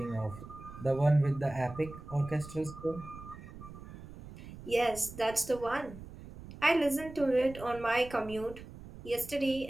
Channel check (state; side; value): noise; right; rumble, 15 dB below the sound